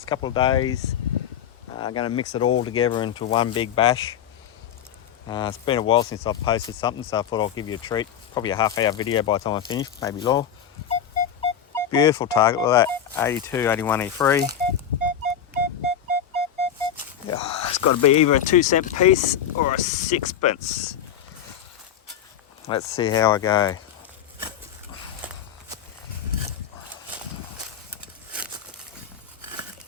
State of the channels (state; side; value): quieter; right; 9.0 dB